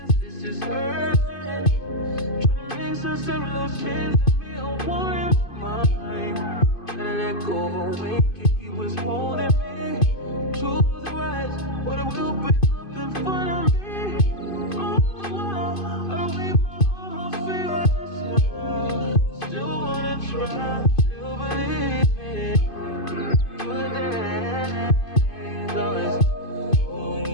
This is urgent. Trying to make sense of those chains that me a war in my mind. Gotta let go away, he was holding me. Choose the right, but it will break up in front of me. All the while, I wait my almost feel still wanna try, still believe it. Good days,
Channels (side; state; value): right; late; 2.5 ms